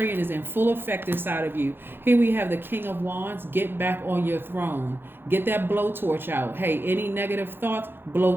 is in full effect inside of you. Here we have the King of Wands. Get back on your throne. Get that blowtorch out. Hey, any negative thoughts,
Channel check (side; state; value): left; late; 0.10 ms